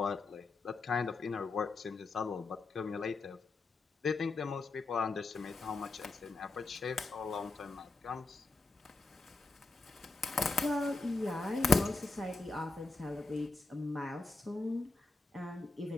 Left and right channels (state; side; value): quieter; right; 3.5 dB